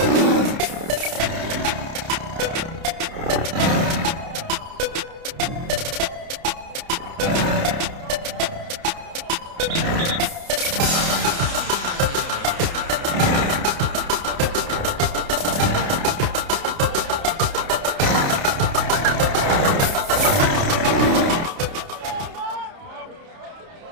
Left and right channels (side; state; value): left; late; 30 ms